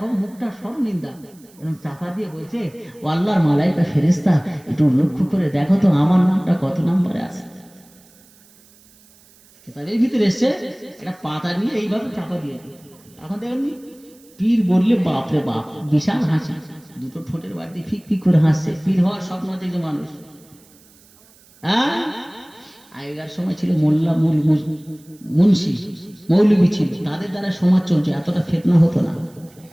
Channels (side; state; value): right; noise; hiss, 28 dB below the sound